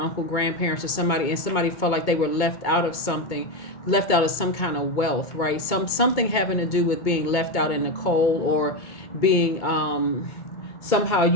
grandparents, or somebody, and somebody felt like they were left out of something, left out of some kind of wealth, right? Something having to do with being left out in the cold, or being somehow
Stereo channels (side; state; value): right; late; 2.2 ms